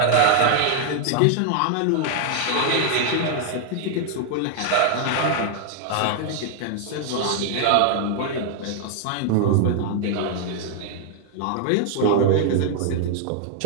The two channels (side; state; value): both; different; correlation 0.00